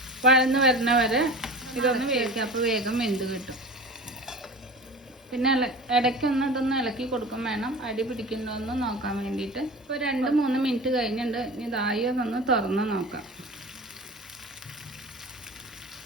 വഴന്ന് വരുന്ന വരെ ഇതൊന്ന് വേവിക്കാം. അപ്പോൾ വേഗം വെന്ത് കിട്ടും. പിന്നെ ഇടയ്ക്കൊന്ന് ഇതൊന്ന് ഇളക്കി കൊടുക്കും വേണം, അടി പിടിക്കണ്ടോന്ന് നോക്കാൻ വേണ്ടിയിട്ട്. ഇപ്പോൾ 2-3 മിനിറ്റ് കഴിഞ്ഞിട്ടുണ്ട്. ഇനി ഇതായി ഒന്ന് തുറന്ന് നോക്കാം.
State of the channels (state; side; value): normal; both; correlation 0.35